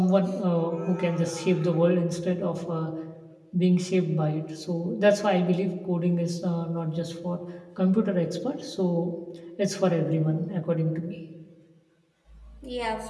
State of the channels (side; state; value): both; identical; correlation 1.00